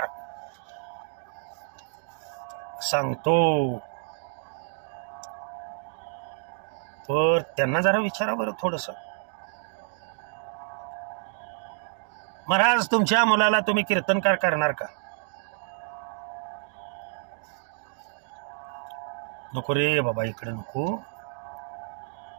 सांगतो. तर त्यांना जरा विचारा बरं थोडस, महाराज तुमच्या मुलाला तुम्ही कीर्तनकार करणार का? नको रे बाबा, इकडे नको,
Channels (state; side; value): silent; left; digital silence